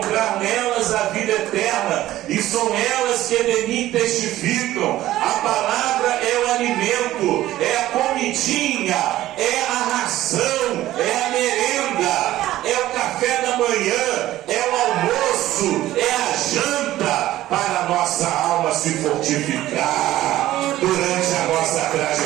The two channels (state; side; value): quieter; left; 14.7 dB